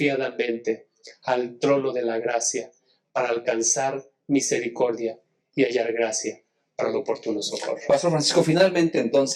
al trono de la gracia para alcanzar misericordia y hallar gracia para el oportuno socorro. Pastor Francisco, finalmente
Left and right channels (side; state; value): both; identical; correlation 1.00